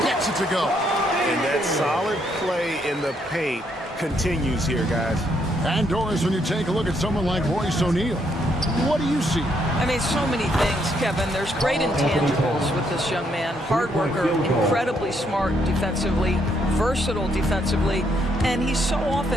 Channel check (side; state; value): both; normal; correlation 0.73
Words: gets it to go. And that solid play in the paint continues here, guys. And Doris, when you take a look at someone like Royce O'Neal, what do you see? I mean, so many things, Kevin. There's great intangibles with this young man. Hard worker, incredibly smart defensively, versatile defensively, and he's so